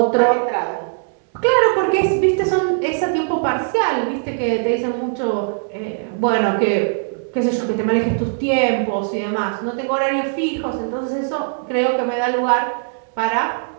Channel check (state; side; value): silent; left; 66 dB below the other